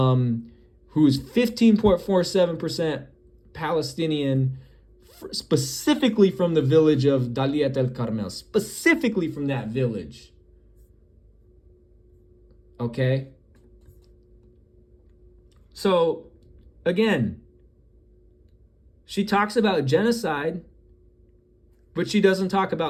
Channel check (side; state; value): both; identical; correlation 1.00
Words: 15.47% Palestinian, specifically from the village of Daliat el Carmel, specifically from that village. Okay? So, again, she talks about genocide, but she doesn't talk